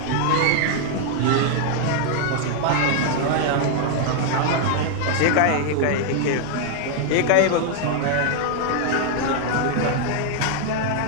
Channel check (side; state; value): both; different; correlation 0.00